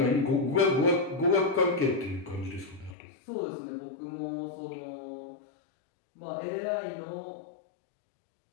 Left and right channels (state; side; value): drops out; right; at 3.0 s